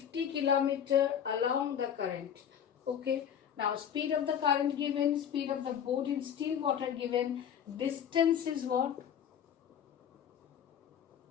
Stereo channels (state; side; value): quieter; right; 8.8 dB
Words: km along the current. Okay, now speed of the current given, speed of the boat in still water given, distance is what?